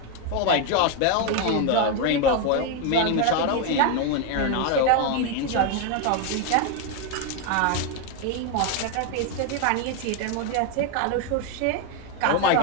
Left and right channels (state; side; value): different; both; correlation 0.01